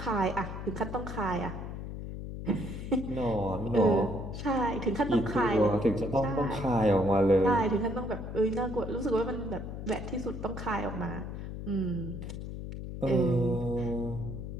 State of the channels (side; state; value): left; noise; hum, 7 dB below the sound